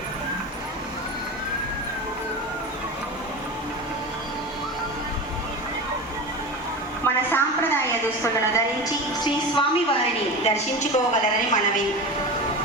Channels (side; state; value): both; normal; correlation 0.27